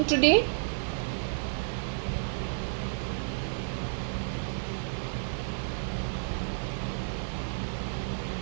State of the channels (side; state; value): left; silent; digital silence